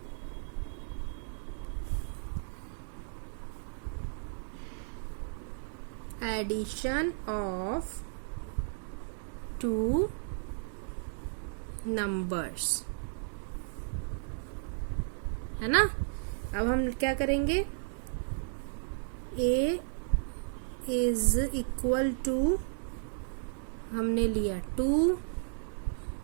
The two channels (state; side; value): silent; left; digital silence